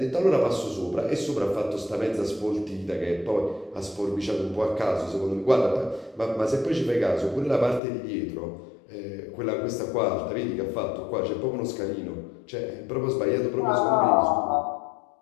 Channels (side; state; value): right; drops out; at 7.8 s